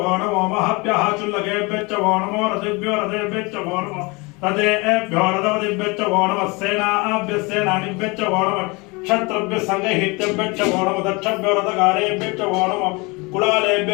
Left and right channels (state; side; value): quieter; right; 26.9 dB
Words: वो नमो महभ्यः चुल्लकेभ्यश्च वो नमो रथेभ्यो रथेभ्यश्च वो नमः रथेभ्यो रथपतिभ्यश्च वो नमः सेनाभ्यः सेनानिभ्यश्च वो नमः क्षत्रभ्यः संगहितेभ्यश्च वो नमः दक्षभ्यो रथकारेभ्यश्च वो नमः